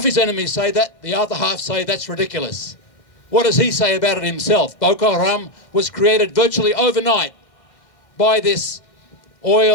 his enemies say that, the other half say that's ridiculous. What does he say about it himself? Boko Haram was created virtually overnight by this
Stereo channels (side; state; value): right; late; 1.6 ms